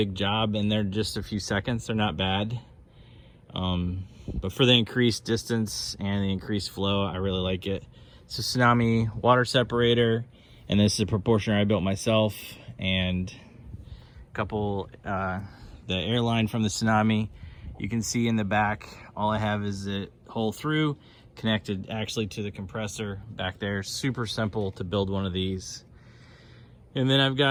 job, and they're just a few seconds. They're not bad. But for the increased distance and the increased flow, I really like it. It's a Tsunami water separator, and this is a proportioner I built myself, and a couple, the airline from the Tsunami. You can see in the back, all I have is it hole through, connected actually to the compressor back there. Super simple to build one of these. And then I've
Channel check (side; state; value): both; identical; correlation 1.00